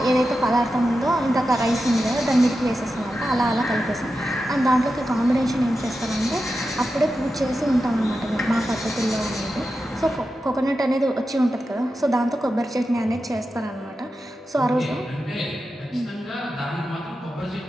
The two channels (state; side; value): normal; both; correlation 0.90